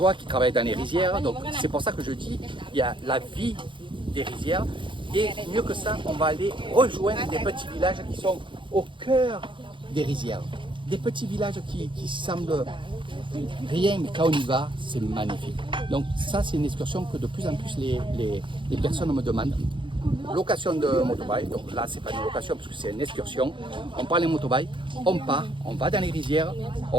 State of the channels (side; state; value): left; late; 0.24 ms